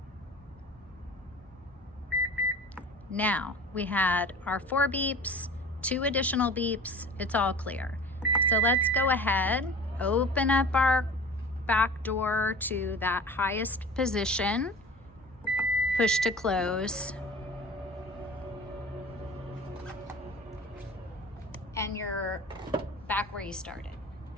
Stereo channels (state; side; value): normal; both; correlation 0.40